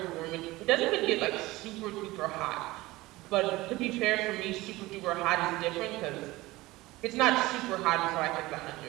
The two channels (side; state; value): left; quieter; 19.5 dB